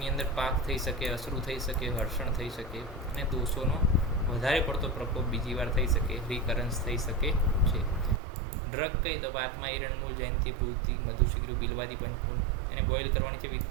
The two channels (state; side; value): drops out; left; at 8.2 s